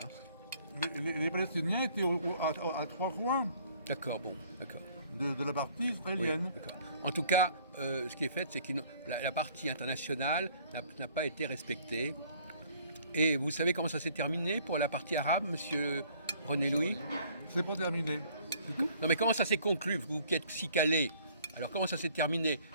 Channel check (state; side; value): inverted; both; correlation -0.57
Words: Hein. Les Palestiniens étaient à 3 coins D'accord, bon, d'accord. de la partie Oui, israélienne. d'accord. En tout cas, ce qui est fait, c'est que la partie internationale n'a pas été respectée. Et vous savez comment ça s'est terminé pour la partie arabe, monsieur René Louis? C'est pas terminé. Non, mais comment ça s'est conclu, vous qui êtes si calé? Alors, comment ça s'est terminé?